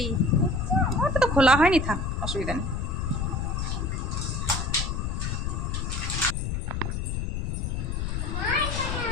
ওটা তো খোলা হয়নি, থাক, অসুবিধা নেই।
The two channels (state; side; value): noise; left; rumble, 1 dB below the sound